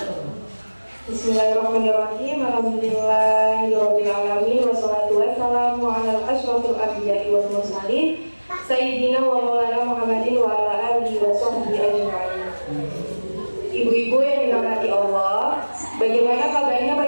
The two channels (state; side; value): inverted; both; correlation -1.00